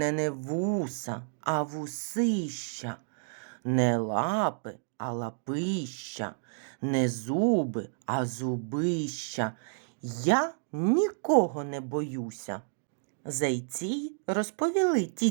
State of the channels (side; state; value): left; silent; digital silence